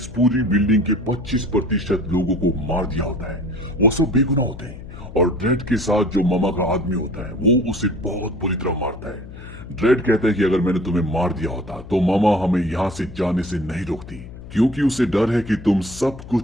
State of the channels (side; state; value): left; noise; hum, 14 dB below the sound